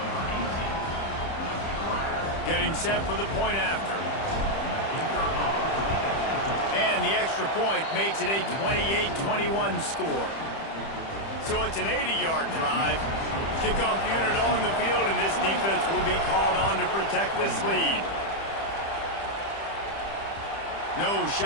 Getting set for the point after. And the extra point makes it a 28-21 score. So it's an 80-yard drive. Kickoff unit on the field, and this defense will be called on to protect this lead. No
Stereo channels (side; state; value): right; late; 30 ms